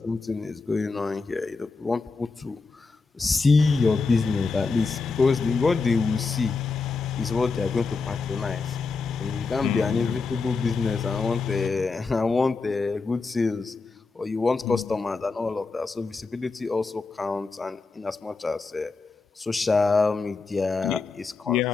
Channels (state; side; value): quieter; right; 4.2 dB